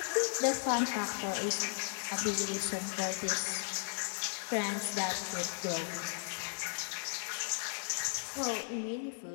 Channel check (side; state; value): right; silent; 54 dB below the other